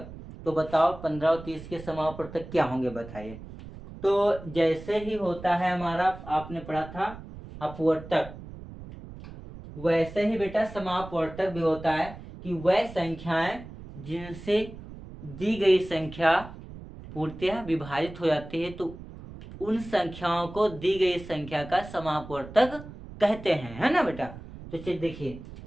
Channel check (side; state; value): right; noise; rumble, 14 dB below the sound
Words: तो बताओ 15 और 30 के समापवर्तक क्या होंगे बताइए। तो जैसे ही होता है हमारा, आपने पढ़ा था अपवर्तक, वैसे ही बेटा समापवर्तक भी होता है कि वह संख्याएं जिनसे दी गई संख्या पूर्णतः विभाजित हो जाती है तो उन संख्याओं को दी गई संख्या का समापवर्तक कहते हैं, है ना बेटा। तो चलिए देखिए,